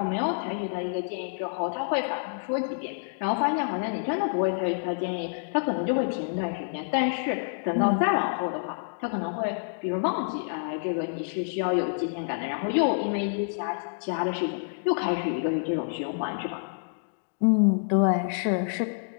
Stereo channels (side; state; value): right; silent; digital silence